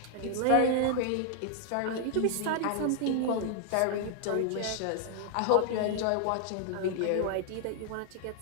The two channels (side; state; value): both; different; correlation 0.00